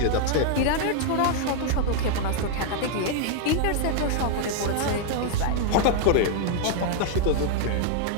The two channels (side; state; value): both; different; correlation 0.00